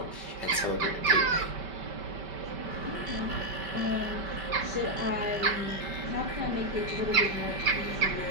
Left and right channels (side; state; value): left; late; 5.2 ms